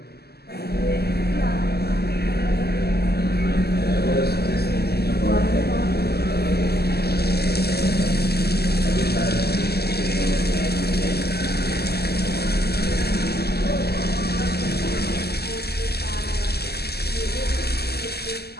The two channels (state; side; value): late; right; 0.46 ms